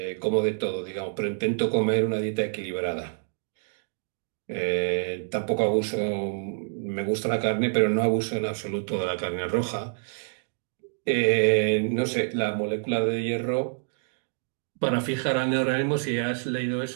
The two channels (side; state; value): left; silent; digital silence